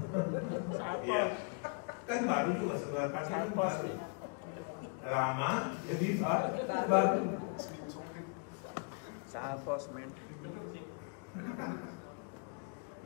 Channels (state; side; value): quieter; right; 38.4 dB